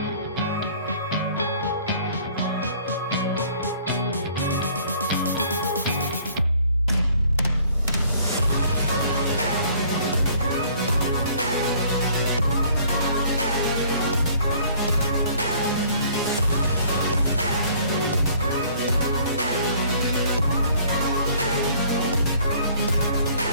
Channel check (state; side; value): inverted; both; correlation -0.57